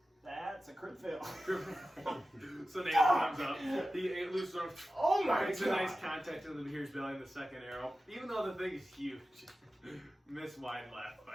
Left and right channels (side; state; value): both; normal; correlation 0.94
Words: That's a crit fail. So Nathan comes up. He loses arm. Oh my Makes a god! nice contact to the Beheer's belly in the second arrow. Even though the thing is huge. Miss wide left